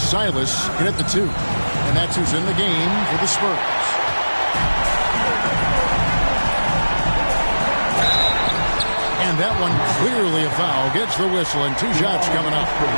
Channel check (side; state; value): both; inverted; correlation -1.00